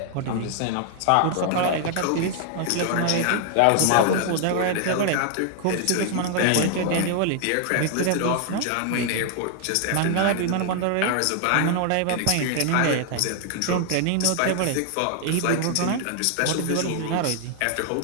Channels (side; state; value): both; different; correlation 0.00